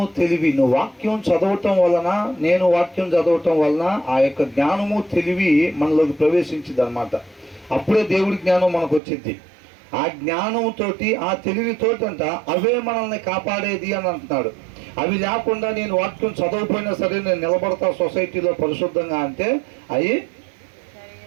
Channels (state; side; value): drops out; left; at 9.0 s